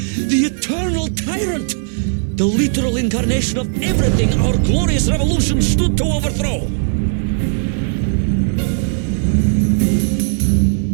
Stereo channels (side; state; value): left; silent; digital silence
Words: the eternal tyrant. The literal incarnation of everything our glorious revolution stood to overthrow.